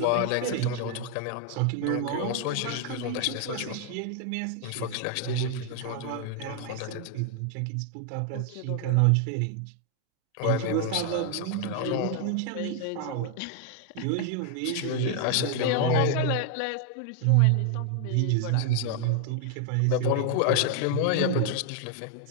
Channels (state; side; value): different; both; correlation 0.00